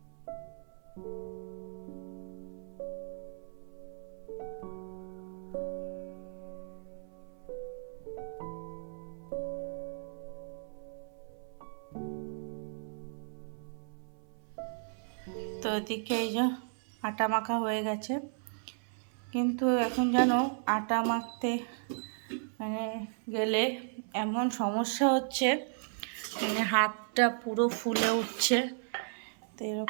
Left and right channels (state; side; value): silent; left; 54 dB below the other